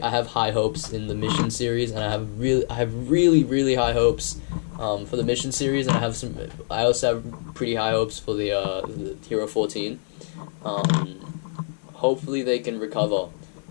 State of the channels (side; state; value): right; silent; 62 dB below the other